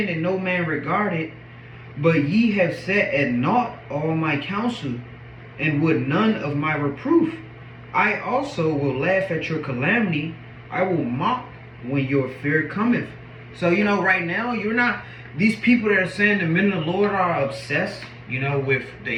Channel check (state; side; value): identical; both; correlation 1.00